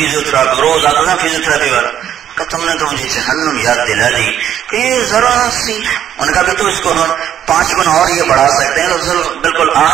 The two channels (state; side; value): quieter; left; 10.2 dB